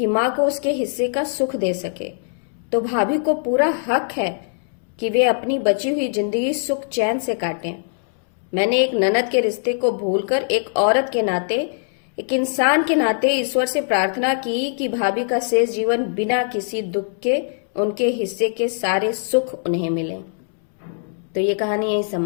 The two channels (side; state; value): right; silent; 65 dB below the other